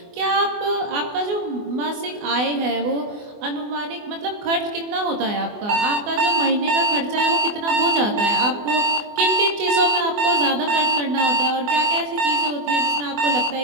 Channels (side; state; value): left; late; 24 ms